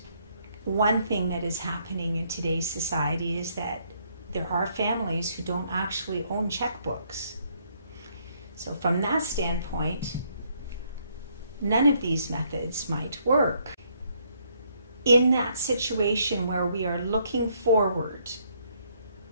one thing that is happening in today's society is that there are families who don't actually own checkbooks. So from that standpoint, none of these methods might work. In that situation where we are looking forward,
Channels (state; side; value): inverted; both; correlation -0.70